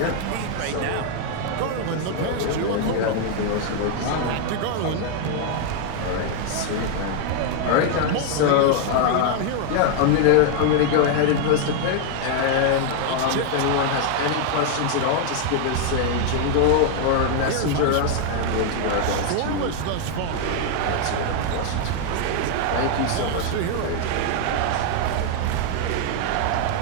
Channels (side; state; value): both; different; correlation 0.00